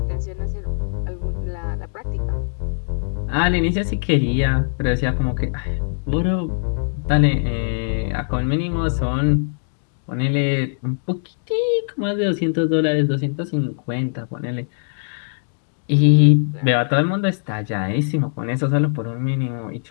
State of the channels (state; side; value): silent; right; digital silence